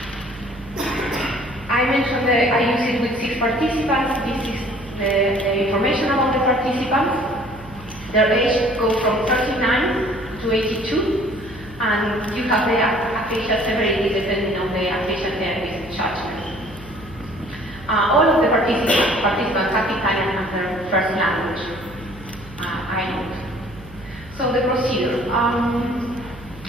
I mentioned that I use it with 6 participants. This is the information about the participants. Their age goes from 39 to 82, and you have the aphasia severity depending on the aphasia therapist judgment. All of the participants have Italian as their first language. I note. So the procedure.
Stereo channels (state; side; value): noise; right; hum, 19 dB below the sound